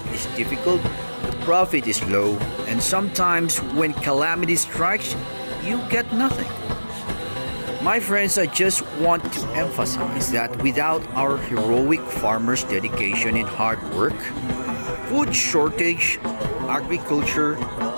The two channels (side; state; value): both; inverted; correlation -1.00